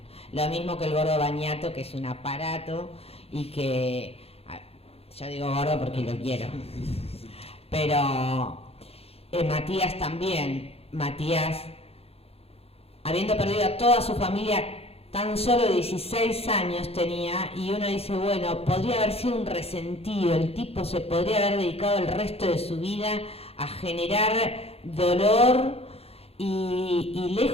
Lo mismo que el gordo Bañato, que es un aparato, y que, yo digo gordo porque lo quiero, pero Matías también. Matías, habiendo perdido a toda su familia, tan solo 16 años tenía, y uno dice, bueno, podría haber sido un resentido, el tipo se podría haber dedicado el resto de su vida a generar dolor, y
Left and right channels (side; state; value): right; late; 0.29 ms